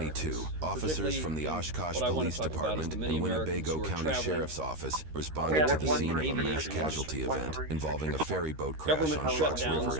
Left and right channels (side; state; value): left; late; 13 ms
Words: officers from the Oshkosh Police Department and Winnebago County Sheriff's Office responded to the scene of a mass casualty event involving a ferry boat crash on Fox River